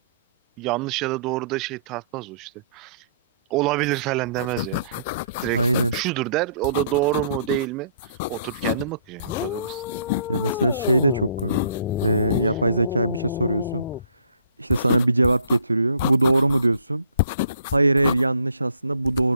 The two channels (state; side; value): inverted; both; correlation -0.60